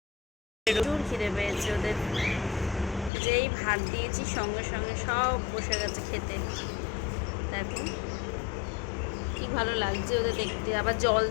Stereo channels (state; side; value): drops out; right; at 3.1 s